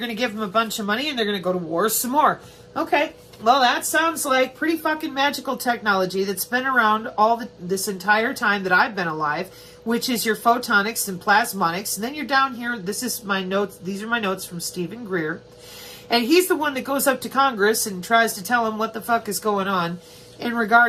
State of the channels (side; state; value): both; identical; correlation 1.00